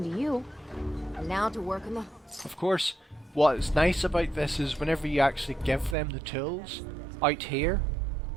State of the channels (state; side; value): drops out; left; at 6.0 s